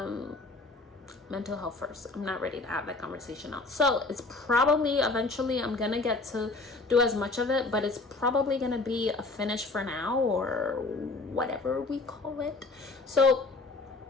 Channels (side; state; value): right; quieter; 3.4 dB